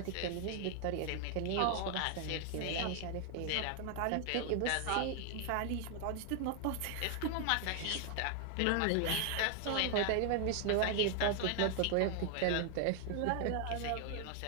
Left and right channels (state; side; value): different; both; correlation 0.00